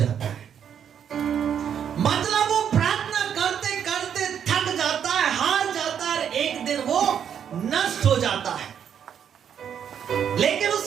है। मतलब वो प्रार्थना करते करते थक जाता है, हार जाता है, एक दिन वो नष्ट हो जाता है, लेकिन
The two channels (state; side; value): quieter; left; 8.5 dB